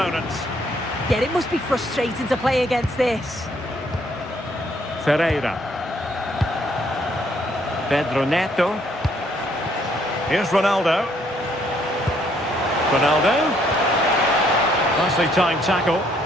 Yeah, it must be frustrating to play against this. Ferreira. Pedro Neto. Here's Ronaldo. Ronaldo. Nicely timed tackle.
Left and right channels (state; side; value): normal; both; correlation 0.67